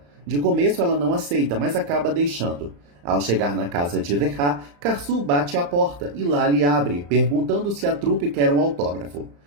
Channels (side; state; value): left; late; 35 ms